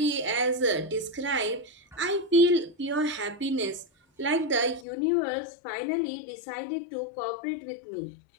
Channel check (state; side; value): drops out; right; at 4.9 s